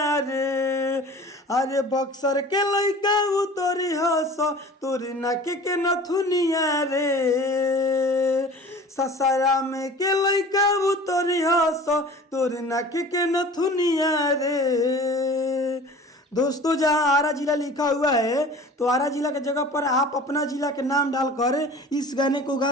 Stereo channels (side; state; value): both; normal; correlation 0.42